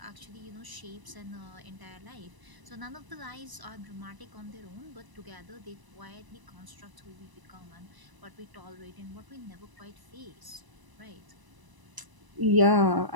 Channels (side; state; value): left; late; 1.0 ms